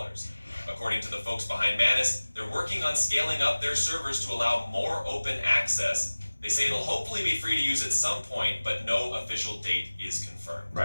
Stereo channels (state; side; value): inverted; both; correlation -1.00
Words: According to the folks behind MANUS, they're working on scaling up their servers to allow more open access. They say it'll hopefully be free to use at some point, but no official date is confirmed.